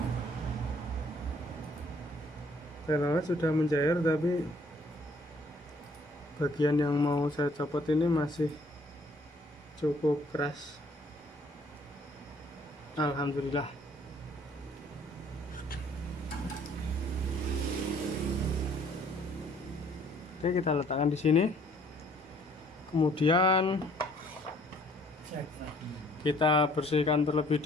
Telolet sudah mencair, tapi bagian yang mau saya copot ini masih cukup keras. Alhamdulillah. Oke, kita letakkan di sini. Kemudian kita bersihkan terlebih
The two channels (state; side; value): normal; both; correlation 0.60